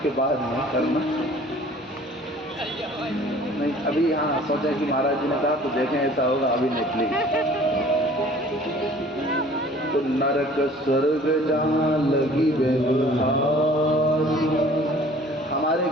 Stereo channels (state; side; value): normal; both; correlation 0.50